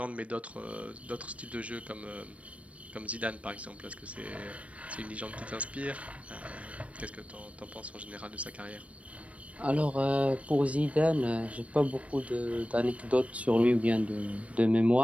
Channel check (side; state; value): left; late; 0.064 ms